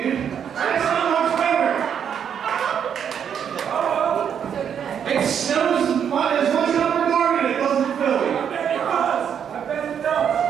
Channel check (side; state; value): left; quieter; 8.2 dB